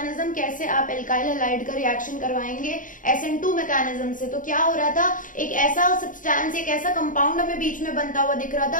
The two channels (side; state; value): right; late; 0.38 ms